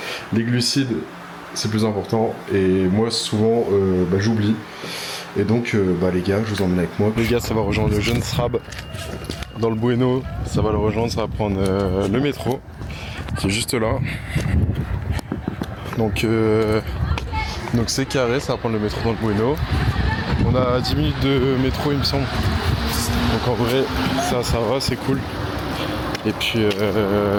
les glucides c'est plus important et moi souvent j'oublie. Et donc les gars, je vous emmène avec moi. Les gars, ça va rejoindre le jeune Srab dans le Bueno. Ça va le rejoindre, ça va prendre le métro. C'est juste là. Donc c'est carré, ça va prendre le métro dans le Bueno. On a 10 minutes de métro il me semble. Donc en vrai ça va, c'est cool. Et puis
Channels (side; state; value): both; identical; correlation 1.00